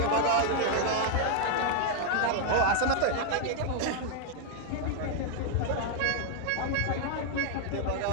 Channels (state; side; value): different; both; correlation 0.00